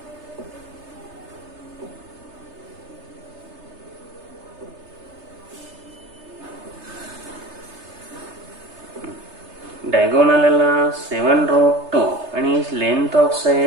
Diagonal आला 7√2 आणि लेंथ ऑफ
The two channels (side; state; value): left; late; 3.3 ms